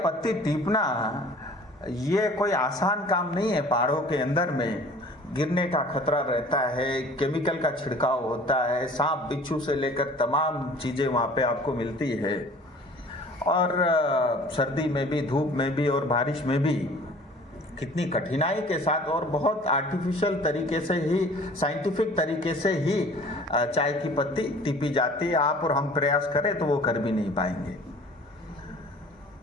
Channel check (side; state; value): both; normal; correlation 0.48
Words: टीपना ये कोई आसान काम नहीं है। पहाड़ों के अंदर में गिरने का खतरा रहता है, केमिकल का छिड़काव होता है, सांप बिच्छू से लेकर तमाम चीज़ें वहाँ पे आपको मिलती है और सर्दी में भी, धूप में भी और बारिश में भी कितनी कठिनाई के साथ और बहुत आर्टिफिशियल तरीके से ही, साइंटिफिक तरीके से ही चाय की पत्ती टीपी जाती है। आप और हम प्रयास करें तो वो कर भी नहीं पाएंगे।